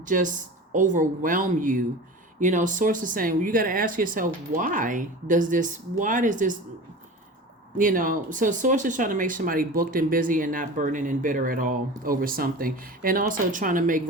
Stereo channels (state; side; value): normal; both; correlation 0.34